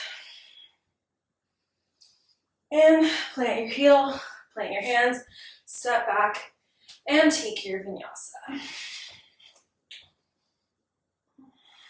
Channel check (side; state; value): both; identical; correlation 1.00